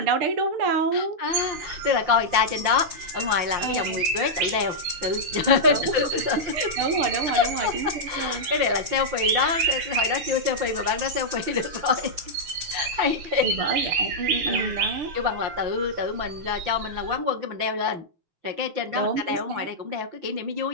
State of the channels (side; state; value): left; late; 5.7 ms